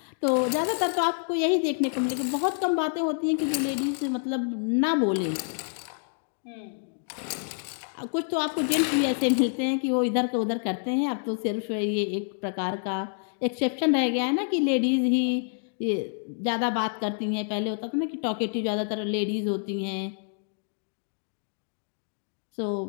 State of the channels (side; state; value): right; silent; 60 dB below the other